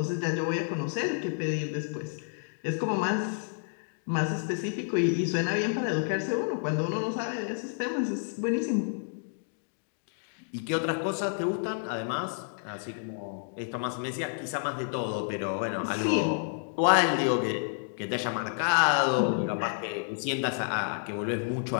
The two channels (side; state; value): right; silent; digital silence